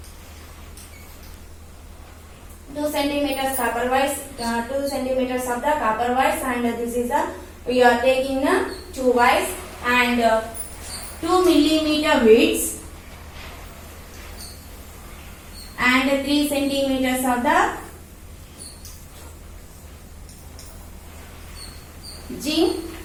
2 centimeters copper wires, 2 centimeters of the copper wires, and this is the, we are taking two wires and 2 millimeter widths and 3 centimeters of the zinc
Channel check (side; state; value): both; identical; correlation 1.00